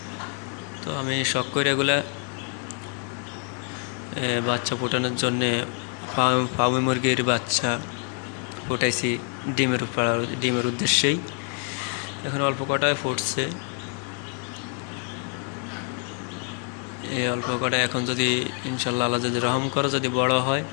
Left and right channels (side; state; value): right; quieter; 38.7 dB